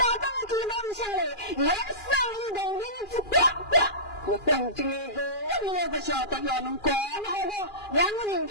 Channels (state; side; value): late; right; 2.4 ms